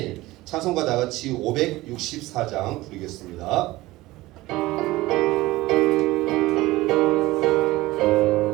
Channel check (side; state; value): left; quieter; 18.6 dB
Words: 찬송가 다같이 564장 부르겠습니다.